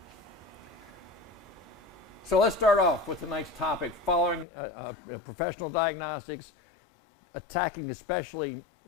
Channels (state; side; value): drops out; right; at 4.5 s